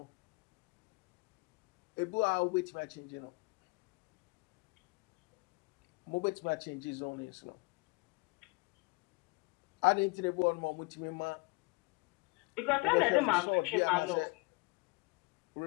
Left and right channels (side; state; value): right; quieter; 28.4 dB